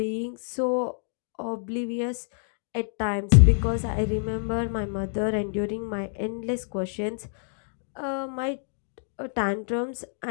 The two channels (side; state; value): right; silent; digital silence